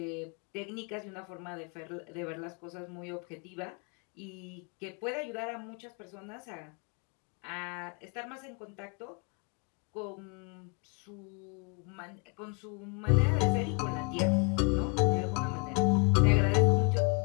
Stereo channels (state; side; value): quieter; right; 32.8 dB